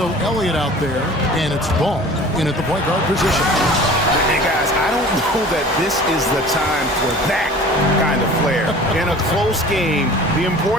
Elliott out there, and it's Ball in at the point guard position. Hey, guys, I don't know that this is the time for that kind of flair. In a close game, the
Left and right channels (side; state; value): both; normal; correlation 0.43